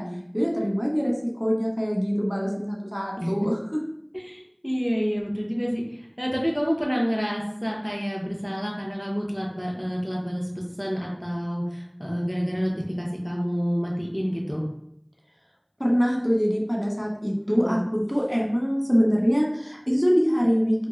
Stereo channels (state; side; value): identical; both; correlation 1.00